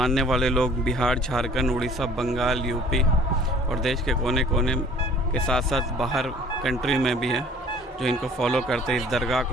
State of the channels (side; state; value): both; normal; correlation 0.52